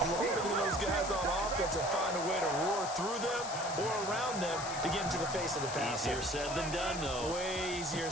lower than those guys on offense and find a way to roar through them or around them to get into the face of the passer. Easier said than done, though. Way easier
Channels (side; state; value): left; noise; hiss, 8 dB below the sound